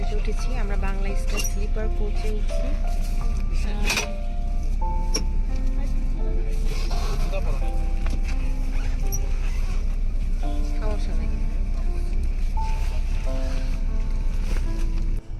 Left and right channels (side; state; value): both; identical; correlation 1.00